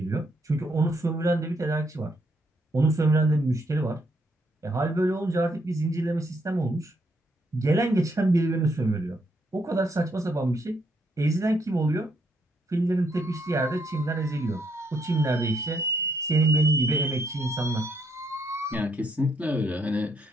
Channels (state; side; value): normal; both; correlation 0.74